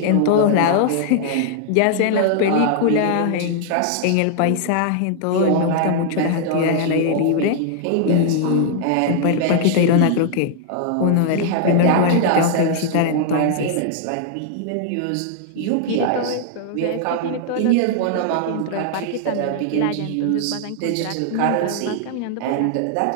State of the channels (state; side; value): different; both; correlation -0.01